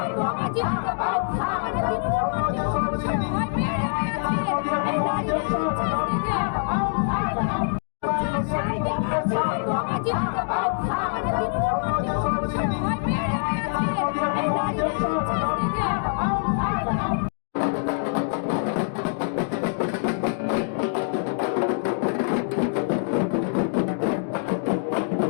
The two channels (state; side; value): silent; right; digital silence